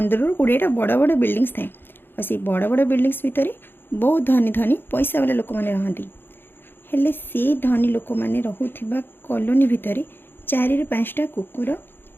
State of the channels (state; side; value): late; right; 0.10 ms